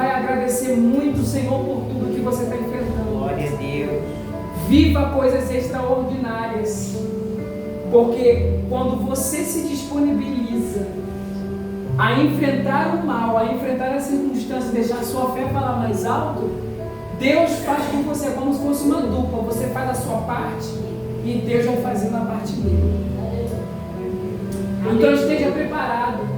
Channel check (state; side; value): identical; both; correlation 1.00